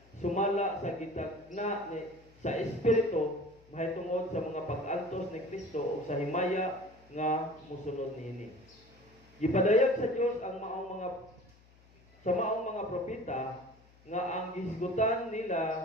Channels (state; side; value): noise; left; hum, 27 dB below the sound